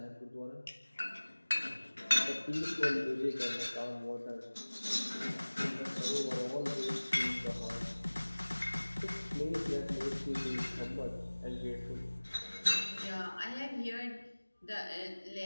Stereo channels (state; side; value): inverted; both; correlation -1.00